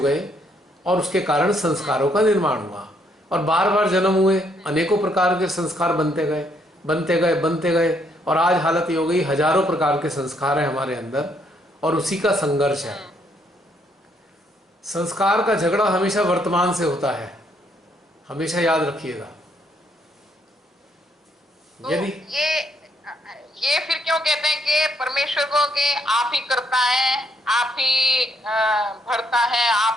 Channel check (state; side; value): normal; both; correlation 0.71